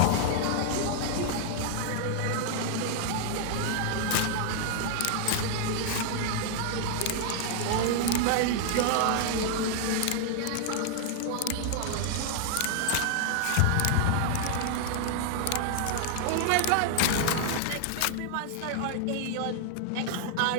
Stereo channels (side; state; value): both; different; correlation 0.00